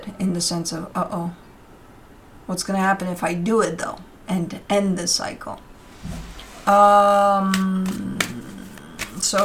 in the sense of, uh-oh, what's going to happen if I do it though, and end this cycle?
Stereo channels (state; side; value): identical; both; correlation 1.00